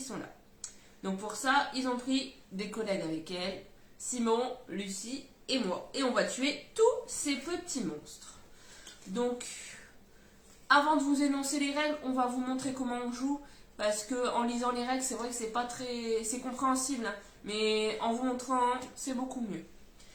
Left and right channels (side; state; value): both; identical; correlation 1.00